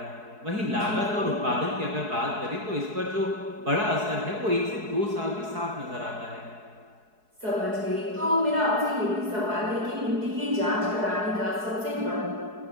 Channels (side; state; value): left; late; 4.7 ms